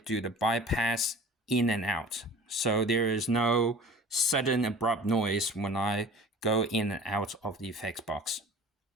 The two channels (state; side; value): normal; both; correlation 0.42